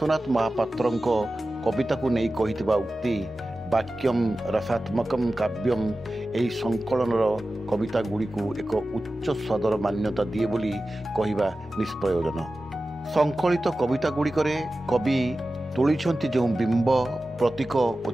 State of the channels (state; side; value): normal; both; correlation 0.95